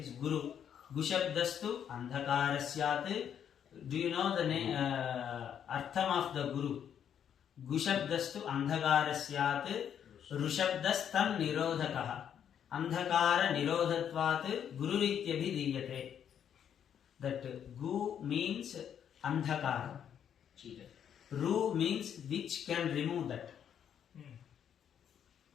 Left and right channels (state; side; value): quieter; right; 8.8 dB